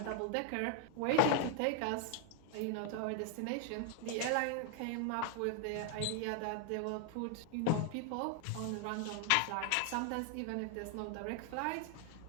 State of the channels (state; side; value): different; both; correlation 0.00